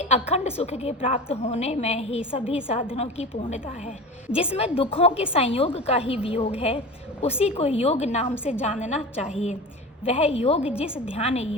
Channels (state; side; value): normal; both; correlation 0.32